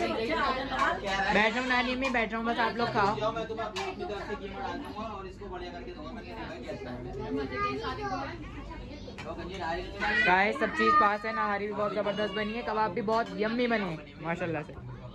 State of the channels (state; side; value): identical; both; correlation 1.00